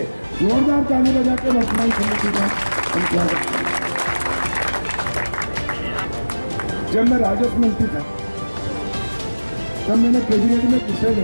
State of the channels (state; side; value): inverted; both; correlation -1.00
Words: जोरदार ताली बजा के वर्तमान समिति का हम क्या करते हैं। जब मैं राजस्व मंत्री था तब मैंने कैबिनेट में विषय